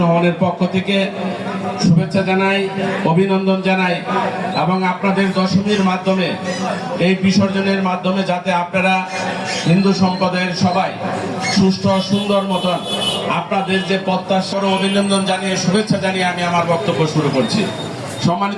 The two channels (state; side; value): identical; both; correlation 1.00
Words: রহমানের পক্ষ থেকে শুভেচ্ছা জানাই, অভিনন্দন জানাই এবং আপনাদের দশমীর মাধ্যমে এই বিসর্জনের মাধ্যমে যাতে আপনারা হিন্দু সম্প্রদায়ের সবাই সুষ্ঠু সুন্দর মতন আপনাদের যে প্রত্যাশার অভিনন্দন জানিয়ে শুভেচ্ছা জানিয়ে আমি আমার বক্তব্য শুরু করছি।